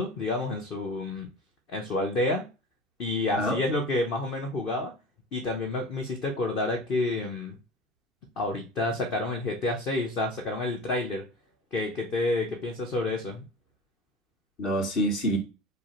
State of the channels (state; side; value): normal; both; correlation 0.35